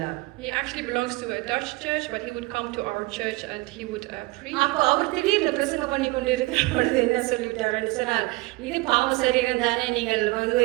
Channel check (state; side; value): quieter; left; 22.6 dB